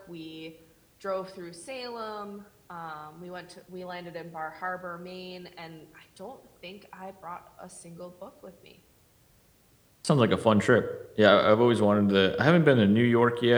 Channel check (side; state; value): both; identical; correlation 1.00